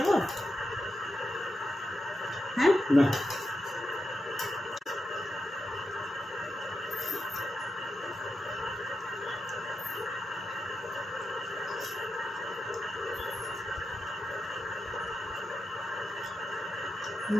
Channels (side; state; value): both; normal; correlation 0.88